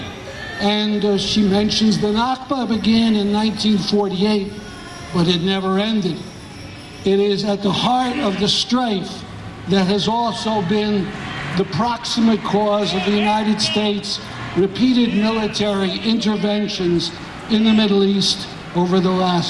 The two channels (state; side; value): identical; both; correlation 1.00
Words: And she mentions the Nakba began in 1948, but it never ended. It is at the heart of the strife that has also been the proximate cause of the United States' repeated military interventions in the Middle East over the